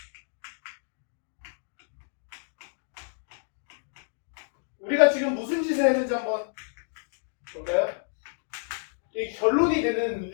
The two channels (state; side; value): silent; right; digital silence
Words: 우리가 지금 무슨 짓을 했는지 한번 볼까요? 이 결론이 되는